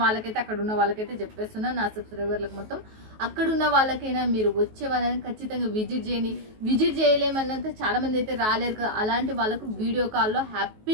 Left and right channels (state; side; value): late; left; 19 ms